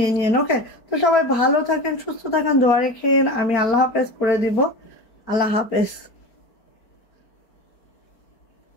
নিয়েন। ওকে, তো সবাই ভালো থাকেন, সুস্থ থাকেন, দোয়া রেখেন। আমি আল্লাহ হাফেজ করে দিব। আল্লাহ হাফেজ।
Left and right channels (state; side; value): late; right; 4.3 ms